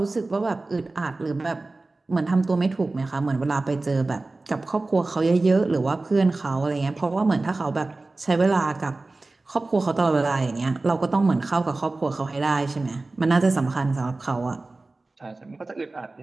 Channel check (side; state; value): left; quieter; 3.2 dB